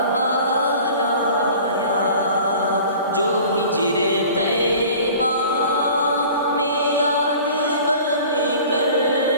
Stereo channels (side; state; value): both; inverted; correlation -0.44